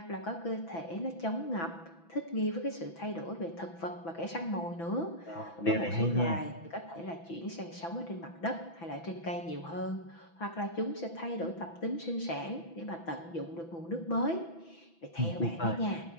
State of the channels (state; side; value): late; right; 6.0 ms